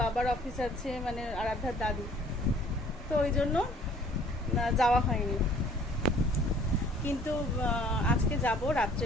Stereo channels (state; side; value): normal; both; correlation 0.55